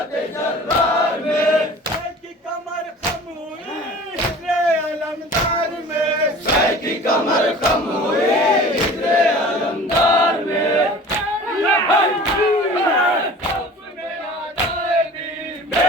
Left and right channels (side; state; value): both; normal; correlation 0.42